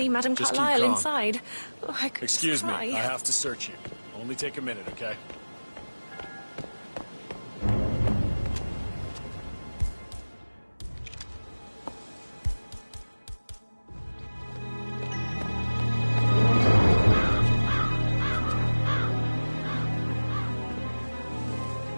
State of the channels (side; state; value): both; inverted; correlation -1.00